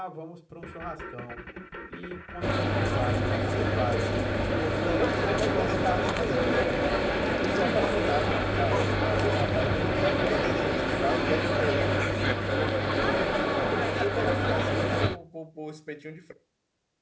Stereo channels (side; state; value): both; identical; correlation 1.00